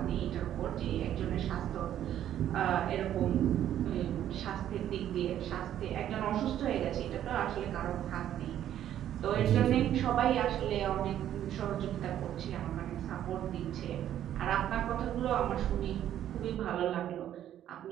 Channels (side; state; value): left; quieter; 11.2 dB